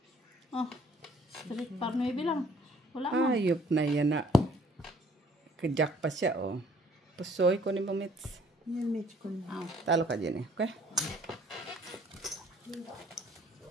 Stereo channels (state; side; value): normal; both; correlation 0.60